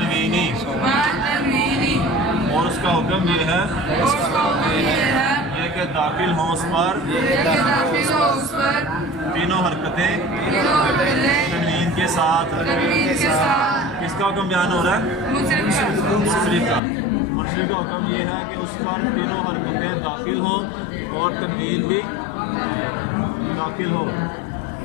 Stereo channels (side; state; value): right; drops out; at 16.8 s